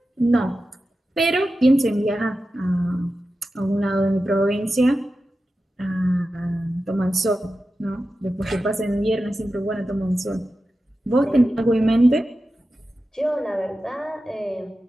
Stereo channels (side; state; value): both; normal; correlation 0.92